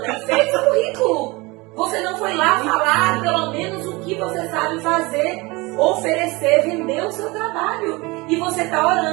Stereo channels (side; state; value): left; quieter; 24.0 dB